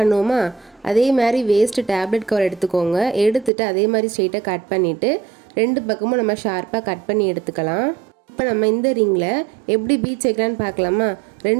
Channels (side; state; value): left; drops out; at 3.5 s